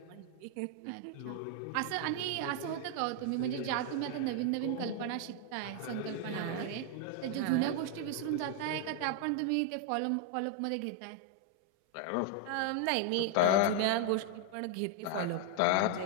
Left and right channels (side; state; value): both; different; correlation 0.00